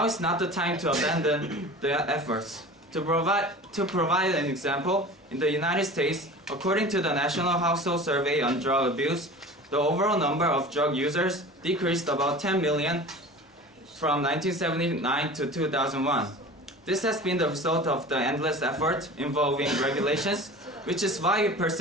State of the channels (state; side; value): normal; both; correlation 0.38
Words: is not the time to abandon the efforts. To provide an example, in the United States, according to the National Household Survey on Drug Abuse, the overall number of drug users decreased about 10 million from 1979 to 2001. This has been the result of the endless effort involving regulations, which is why we